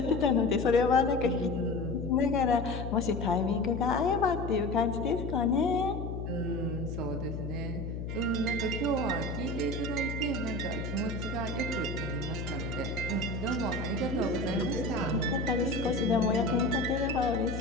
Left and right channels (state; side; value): noise; left; hum, 5 dB below the sound